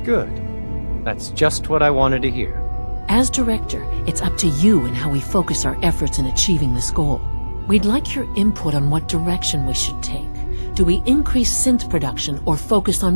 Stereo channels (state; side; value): inverted; both; correlation -1.00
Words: Good. That's just what I wanted to hear. As director, it's up to you and how we focus our efforts in achieving this goal. We'd like your input on what direction we should take. Do we increase synth production or focus